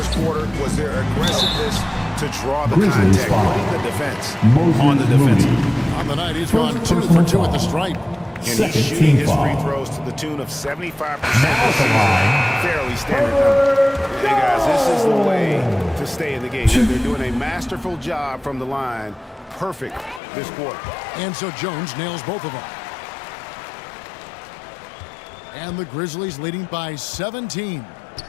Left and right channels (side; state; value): right; drops out; at 20.2 s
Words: quarter was their aggressiveness to draw the contact, putting the defense on the defensive. On the night, he's gone 2 for 2 at the stripe. And he's shooting his free throws to the tune of 75% this season. Fairly standard number. Hey, guys, this is the way to stay in the game. They're doing a masterful job from the line. Perfect this quarter. And so Jones nails both of them. And the Grizzlies leading by 17.